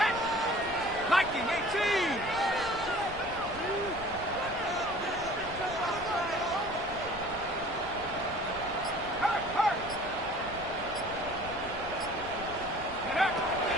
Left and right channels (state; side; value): noise; right; rumble, 15 dB below the sound